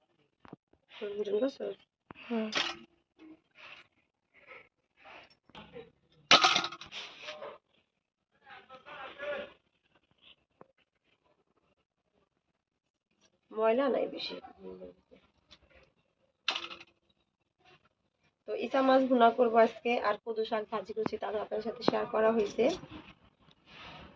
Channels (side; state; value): both; identical; correlation 1.00